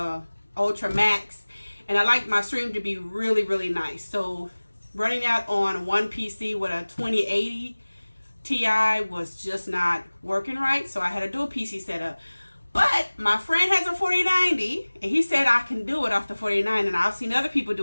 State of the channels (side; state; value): both; inverted; correlation -1.00